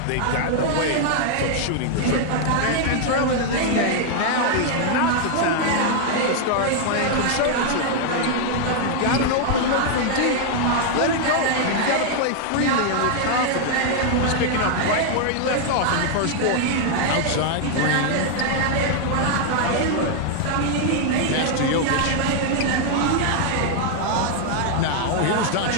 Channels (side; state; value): both; different; correlation 0.00